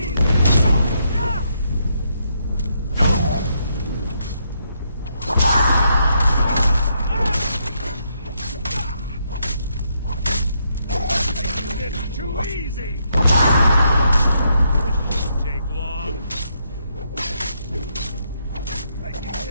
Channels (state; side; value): inverted; both; correlation -0.77